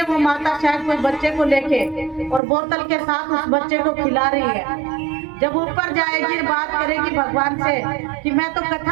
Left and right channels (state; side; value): drops out; left; at 2.4 s